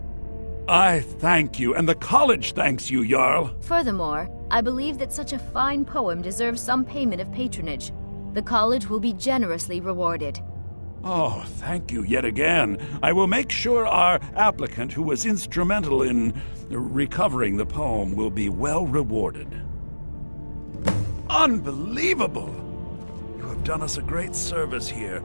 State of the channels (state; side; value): inverted; both; correlation -1.00